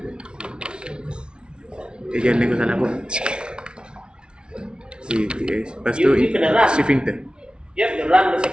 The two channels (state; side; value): late; left; 0.056 ms